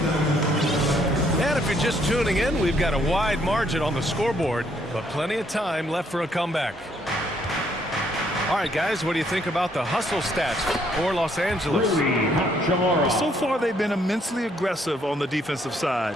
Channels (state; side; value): normal; both; correlation 0.69